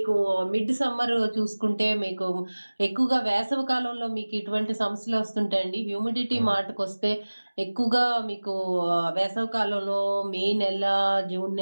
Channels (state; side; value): inverted; both; correlation -1.00